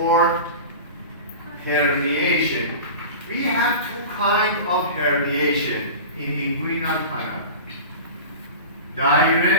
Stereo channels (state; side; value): inverted; both; correlation -0.32